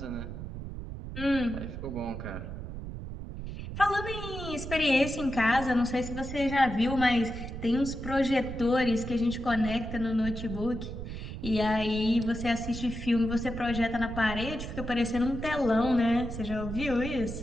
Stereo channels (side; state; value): right; noise; rumble, 8 dB below the sound